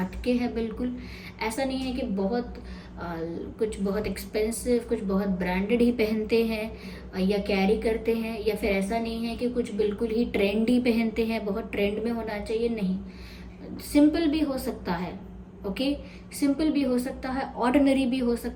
है बिल्कुल। ऐसा नहीं है कि कुछ बहुत एक्सपेंसिव, कुछ बहुत ब्रांडेड ही पहनते हैं या कैरी करते हैं, या फिर ऐसा नहीं है कि कुछ बिल्कुल ही ट्रेंडी पहनते हैं, बहुत ट्रेंड में होना चाहिए। नहीं, सिंपल भी हो सकता है, ओके, सिंपल भी हो सकता है, ऑर्डिनरी भी हो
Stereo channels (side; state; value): both; identical; correlation 1.00